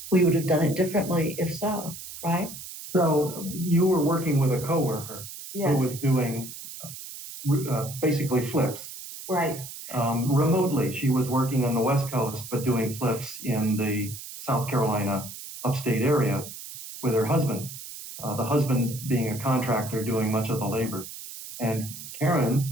We would have done it differently if so, right? So you were working with a coworker Yes. who was doing basically flips. Right. Remotely. She was working on the West Coast, but doing flips in the South Carolina upstate area with her husband, the husband being a contractor doing much of the labor. And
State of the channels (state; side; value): noise; right; hiss, 12 dB below the sound